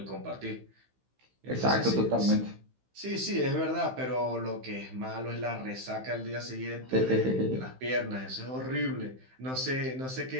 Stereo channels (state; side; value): late; left; 15 ms